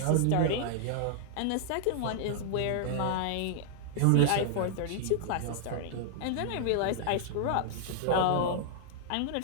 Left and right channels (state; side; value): different; both; correlation -0.01